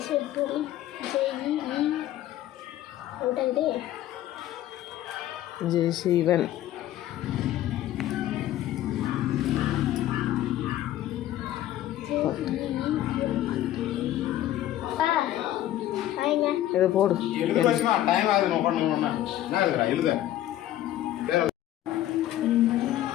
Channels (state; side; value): quieter; right; 13.3 dB